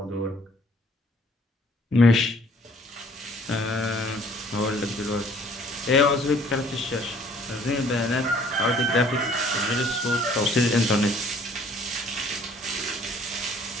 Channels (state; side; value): normal; both; correlation 0.58